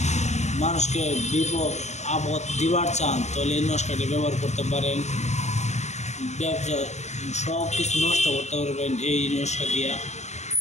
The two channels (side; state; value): right; late; 0.33 ms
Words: মানুষকে বিপদ আপদ দিবার চান, তাহলে এই নস্কাটি ব্যবহার করতে পারেন। ব্যবসা সব কিছু নষ্ট করতে পারবেন এই নস্কা দিয়া।